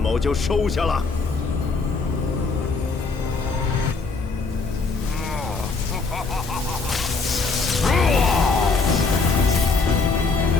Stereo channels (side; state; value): right; quieter; 4.2 dB